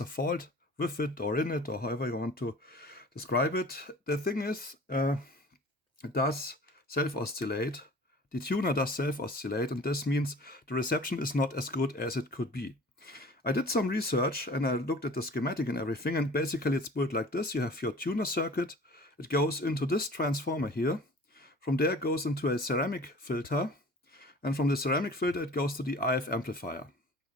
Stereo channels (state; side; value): normal; both; correlation 0.45